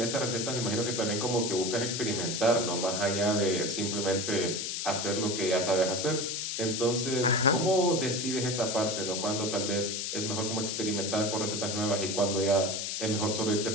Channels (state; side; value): noise; left; hiss, 3 dB below the sound